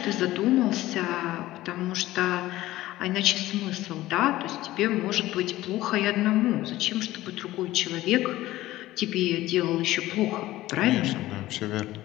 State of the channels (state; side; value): quieter; right; 16.3 dB